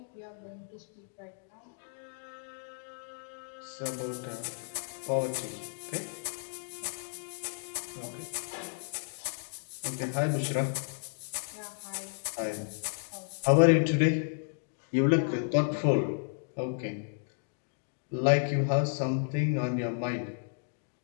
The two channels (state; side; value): silent; right; digital silence